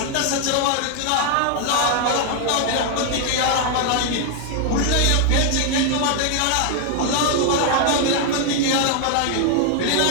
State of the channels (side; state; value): both; different; correlation 0.00